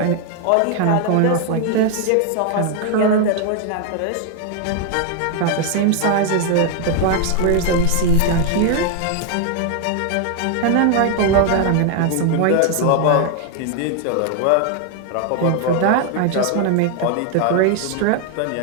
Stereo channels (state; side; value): different; both; correlation 0.00